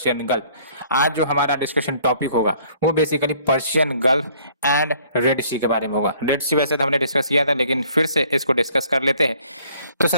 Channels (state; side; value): inverted; both; correlation -0.59